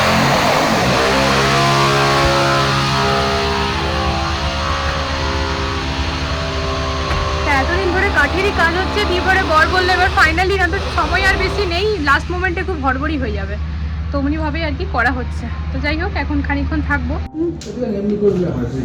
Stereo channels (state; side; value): identical; both; correlation 1.00